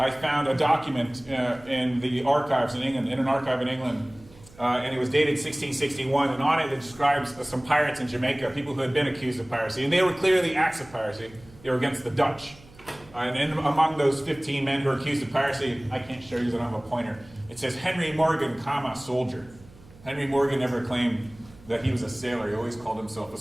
found a document in the archives in England, in an archive in England, and it was dated 1661, and on it describes some pirates in Jamaica, people who had been accused of piracy, and they were clearly acts of piracy. They were against the Dutch. And among those 15 men who were accused of piracy, I can't show you because I don't have a pointer, it says Henry Morgan, soldier. Henry Morgan never claimed that he was a sailor. He always called himself a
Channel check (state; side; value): noise; right; hum, 23 dB below the sound